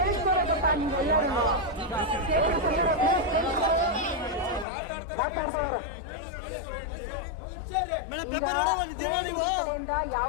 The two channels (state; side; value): drops out; right; at 4.7 s